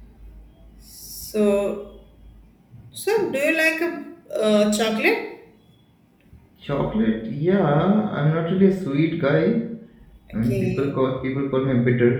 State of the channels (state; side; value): identical; both; correlation 1.00